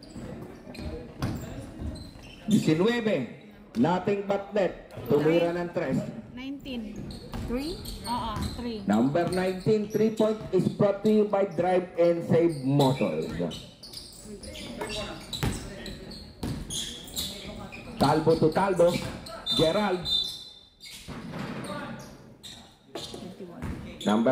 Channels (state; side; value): identical; both; correlation 1.00